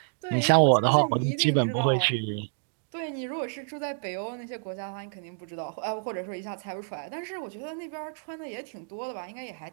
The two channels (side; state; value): left; silent; digital silence